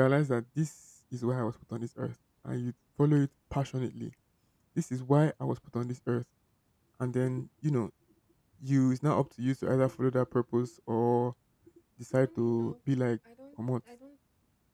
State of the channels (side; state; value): both; identical; correlation 1.00